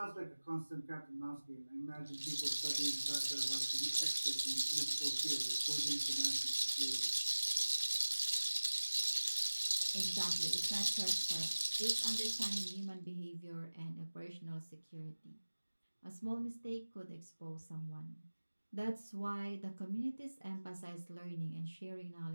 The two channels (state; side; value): inverted; both; correlation -1.00